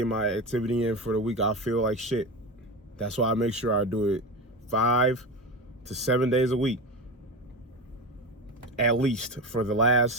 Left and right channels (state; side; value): normal; both; correlation 0.22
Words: my activity in for the week, I feel like shit. That's why I make sure I do it 5 to 7 days a week, at least for the